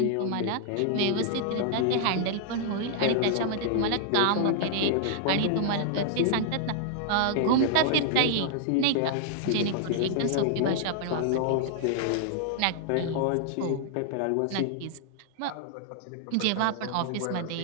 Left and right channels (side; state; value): both; different; correlation -0.01